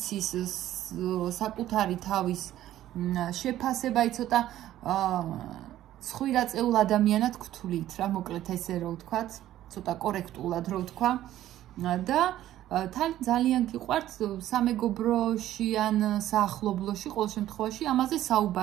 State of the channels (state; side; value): quieter; left; 13.2 dB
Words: საკუთარი თავის შეფასება, აი ცოტა ცხვირაწეულ ადამიანად გთვლით რა, მოკლედ ესე რო ვთქვათ. ცოტა კორექტულად რო ვთქვა და თან ძალიან გიყვართ სამეგობროში ან საახლობლოში ყოველ შემთხვევაში ამაზე